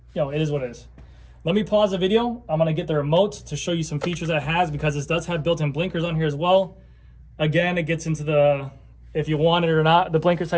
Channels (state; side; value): identical; both; correlation 1.00